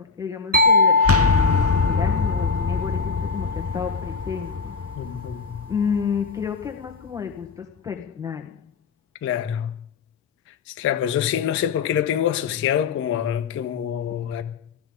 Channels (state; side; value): quieter; right; 5.0 dB